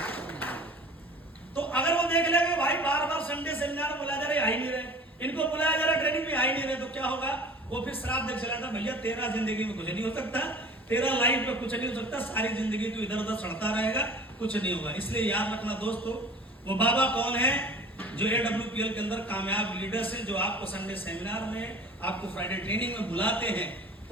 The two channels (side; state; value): both; normal; correlation 0.43